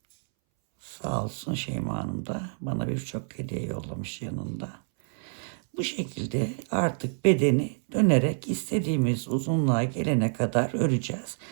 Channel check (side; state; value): left; silent; 60 dB below the other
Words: Sağ olsun Şeyma Hanım da bana birçok hediye yollamış yanında. Bu şekilde artık bedeni dönerek istediğimiz uzunluğa gelene kadar öreceğiz.